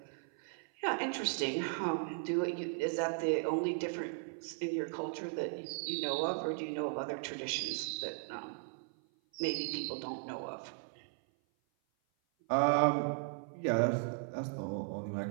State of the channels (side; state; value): left; silent; 53 dB below the other